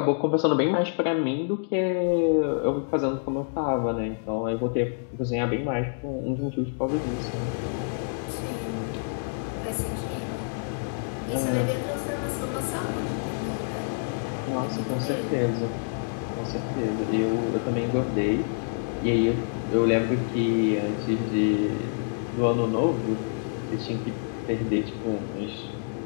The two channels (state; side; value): silent; right; digital silence